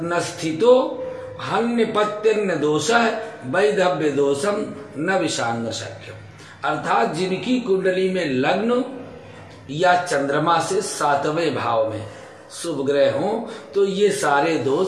स्थितो हन्यपत्यन्न दोषः वैधव्य दोषम न विषांग शक्यम। अर्थात जिनकी कुंडली में लग्न या चंद्रमा से 7वें भाव में शुभ ग्रह हो तो ये सारे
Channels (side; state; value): both; identical; correlation 1.00